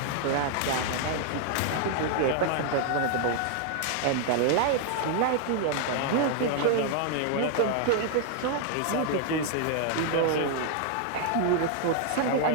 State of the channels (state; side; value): different; both; correlation 0.00